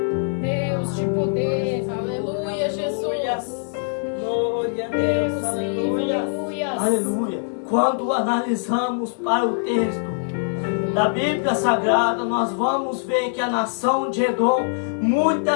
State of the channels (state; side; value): silent; right; 64 dB below the other